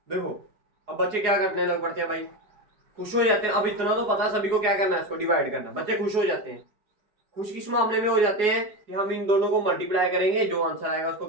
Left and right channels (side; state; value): left; late; 4.8 ms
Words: देखो अब बच्चे क्या करने लग पड़ते हैं भाई, खुश हो जाते हैं। अब इतना तो पता सभी को क्या करना है, इसको डिवाइड करना है। बच्चे खुश हो जाते हैं। खुश किस मामले में हो जाते हैं कि हम इन दोनों को मल्टीप्लाई करेंगे, जो आंसर आएगा उसको